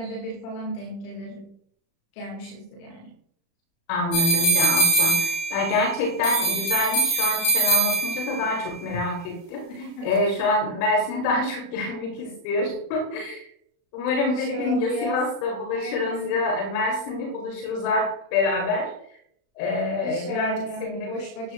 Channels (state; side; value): late; right; 35 ms